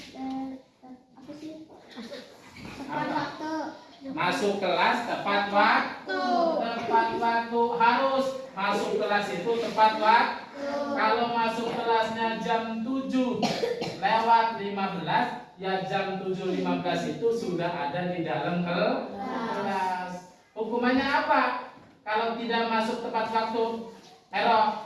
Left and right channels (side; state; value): both; identical; correlation 1.00